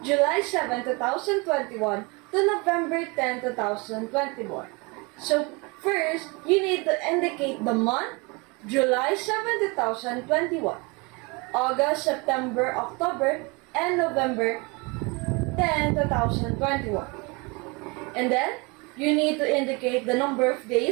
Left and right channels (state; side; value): quieter; left; 28.3 dB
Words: July 7, 2021 to November 10, 2021. So first, you need to indicate the month, July 7, 2021, August, September, October, and November 10, 2021. And then, you need to indicate the number of